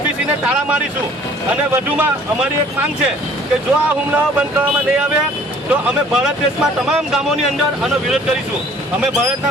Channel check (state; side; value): normal; both; correlation 0.54